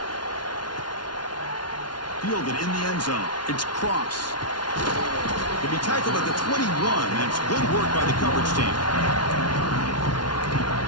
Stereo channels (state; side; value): late; right; 0.70 ms